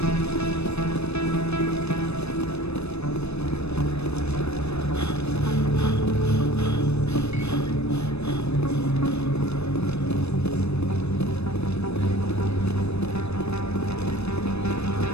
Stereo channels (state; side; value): late; right; 0.79 ms